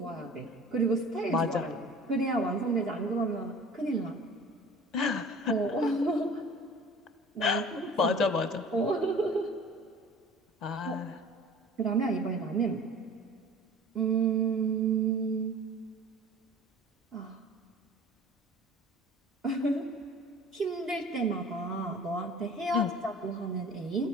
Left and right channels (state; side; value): normal; both; correlation 0.44